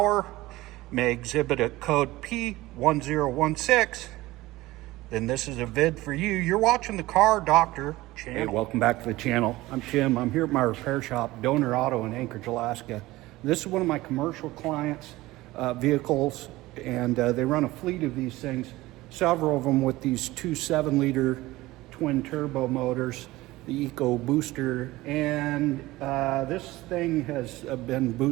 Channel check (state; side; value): quieter; left; 18.5 dB